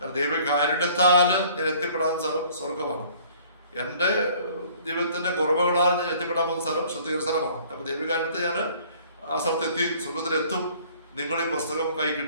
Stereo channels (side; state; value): both; inverted; correlation -0.54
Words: ദൈവകാരുണ്യത്താൽ ഞാൻ എത്തിപ്പെടാൻ സ്ഥലം സ്വർഗമാണ്. എൻ്റെ ജീവിതത്തിന്റെ കുറവുകളാൽ ഞാൻ എത്തിപ്പെടാൻ പോകുന്ന സ്ഥലം ശുദ്ധീകരണ സ്ഥലമാണ്. അപ്പൊ ദൈവകാരുണ്യത്തെ ഞാൻ ആ സ്ഥലത്തെത്തി സ്വർഗത്തിലെത്തും. നിങ്ങൾ ഈ പുസ്തകം കൈ